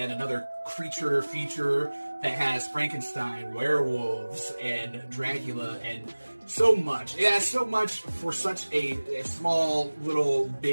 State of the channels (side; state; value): both; inverted; correlation -1.00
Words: another creature feature that has Frankenstein, werewolves, and Dracula, and so much. Yeah, so much for such a small, little,